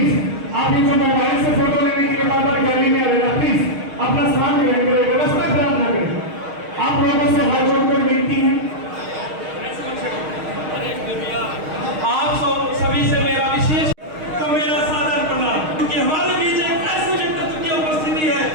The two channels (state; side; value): late; left; 6.4 ms